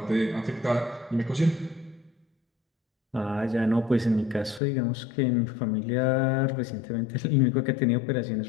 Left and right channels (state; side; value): drops out; right; at 4.6 s